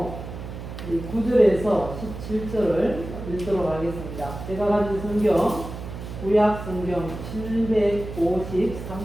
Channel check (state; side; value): noise; right; hum, 10 dB below the sound